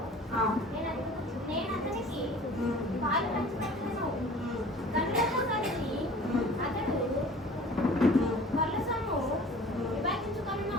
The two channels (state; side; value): normal; both; correlation 0.45